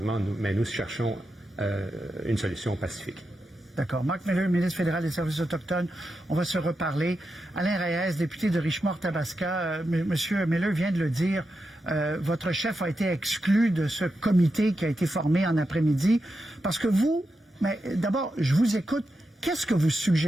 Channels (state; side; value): normal; both; correlation 0.88